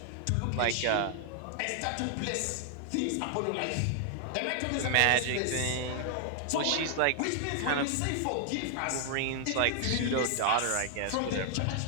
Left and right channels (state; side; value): different; both; correlation 0.00